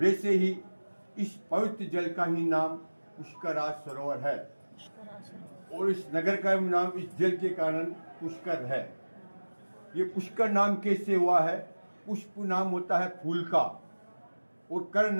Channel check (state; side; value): inverted; both; correlation -1.00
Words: ही इस पवित्र जल का ही नाम पुष्कराज सरोवर है और इस नगर का नाम इस जल के कारण पुष्कर है। ये पुष्कर नाम कैसे हुआ है? पुष्प नाम होता है फूल का और कर